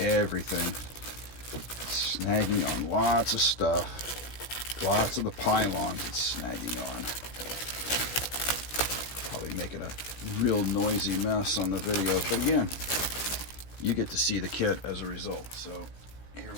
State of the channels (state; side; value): late; right; 16 ms